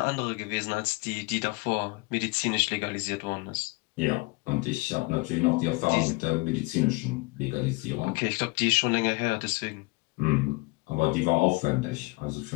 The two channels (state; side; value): quieter; right; 26.2 dB